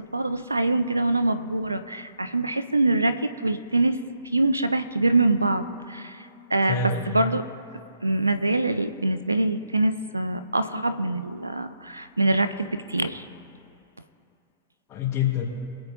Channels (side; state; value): both; inverted; correlation -0.80